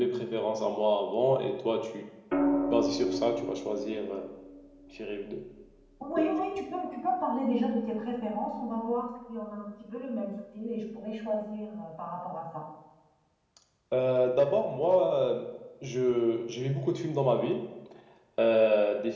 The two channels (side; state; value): both; identical; correlation 1.00